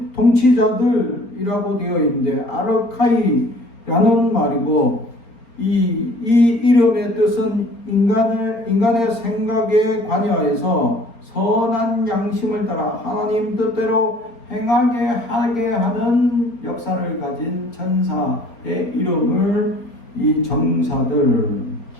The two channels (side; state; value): right; late; 4.3 ms